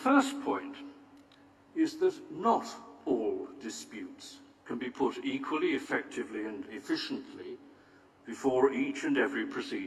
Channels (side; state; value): both; identical; correlation 1.00